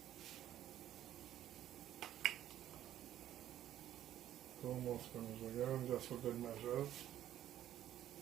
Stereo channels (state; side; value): quieter; left; 12.0 dB